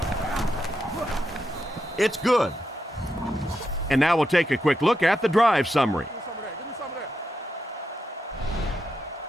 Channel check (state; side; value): normal; both; correlation 0.85